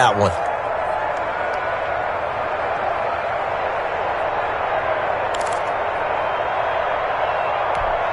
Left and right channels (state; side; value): identical; both; correlation 1.00